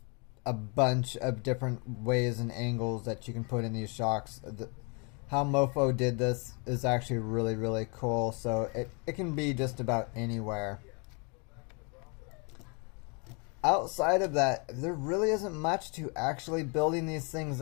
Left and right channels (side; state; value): right; quieter; 34.1 dB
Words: a bunch of different ways and angles that you can put in these shocks. How Mofo did this is actually really cool. So it can be just about anywhere. Outside of that, there really isn't much to actually building these things